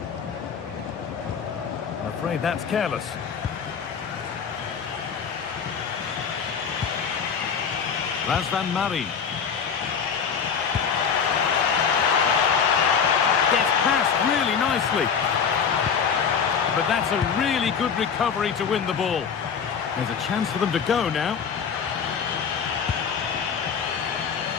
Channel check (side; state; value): right; quieter; 6.7 dB